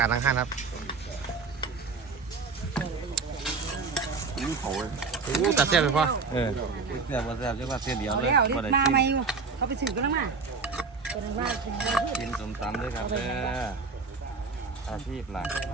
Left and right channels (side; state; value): left; quieter; 4.6 dB